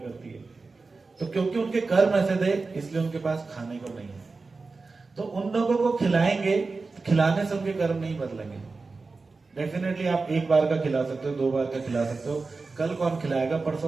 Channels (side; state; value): left; quieter; 4.0 dB